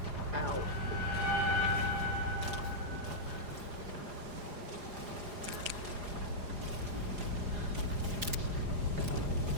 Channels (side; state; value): left; late; 4.9 ms